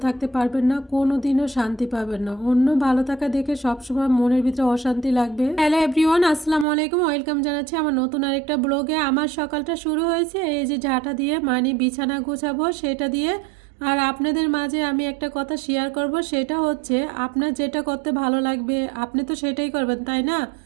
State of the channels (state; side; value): drops out; left; at 6.7 s